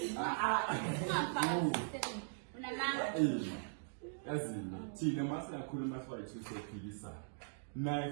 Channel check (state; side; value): silent; left; digital silence